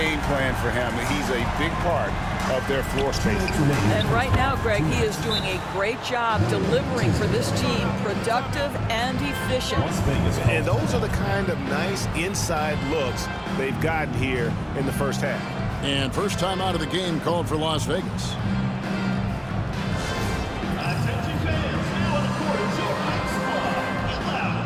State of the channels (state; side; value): identical; both; correlation 1.00